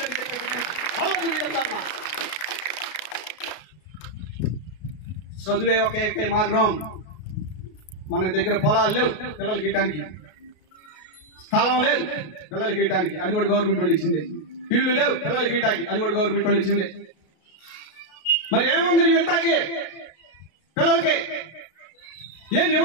చెప్తాను. చదువే ఒక ఏకై మార్గం. మన దగ్గర పొలాలు లేవు పిల్లలకి ఇయటానికి, స్థలం లేదు పిల్లలకి ఇయటానికి, అది కూడా గవర్నమెంట్ వాళ్ళు ఇచ్చింది. ఇల్లు లేవు పిల్లలకి ఇయటానికి, అది కూడా గవర్నమెంట్ వాళ్ళు ఇచ్చింది. మరి ఏముంది నువ్వు ఇంతకి పిల్లలకి? ఏమి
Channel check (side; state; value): right; late; 33 ms